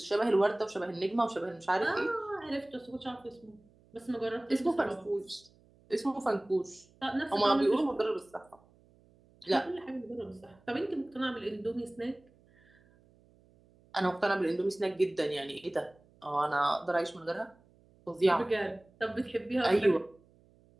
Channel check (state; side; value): noise; right; hum, 30 dB below the sound